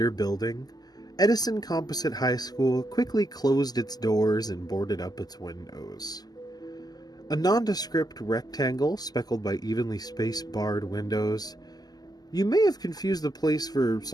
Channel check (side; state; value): right; late; 0.19 ms